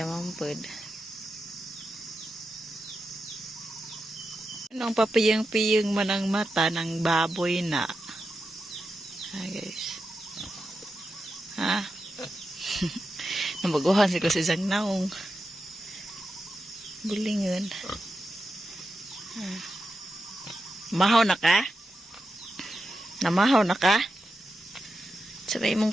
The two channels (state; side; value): normal; both; correlation 0.89